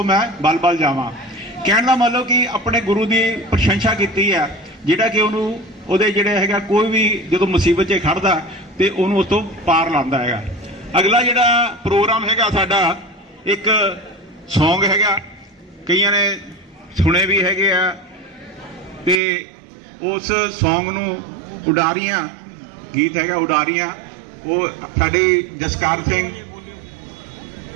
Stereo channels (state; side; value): drops out; left; at 19.2 s